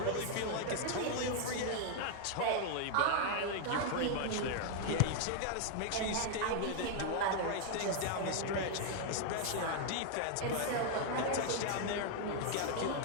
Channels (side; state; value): both; different; correlation 0.00